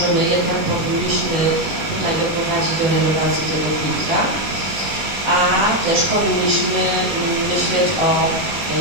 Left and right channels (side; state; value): left; late; 19 ms